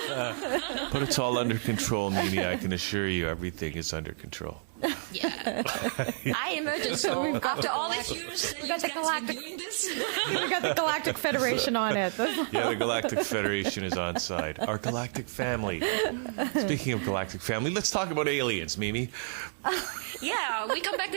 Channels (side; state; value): left; silent; digital silence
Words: But it's all under control, Mimi. I can assure you everything is under control. Yeah. I imagine so. After all these years that you got the guys galactic- been doing this. We got the Galactic Federation on it. Yeah, the Galactic Federation is on side. Our galactic family. Speaking of galactic family, let's talk about aliens, Mimi. Yeah, we come back